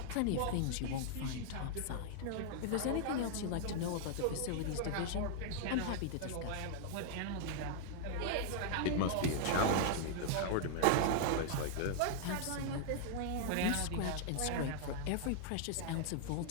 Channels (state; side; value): different; both; correlation -0.01